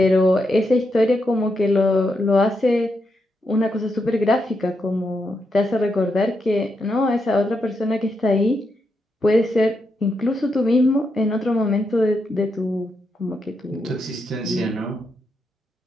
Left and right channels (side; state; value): both; normal; correlation 0.83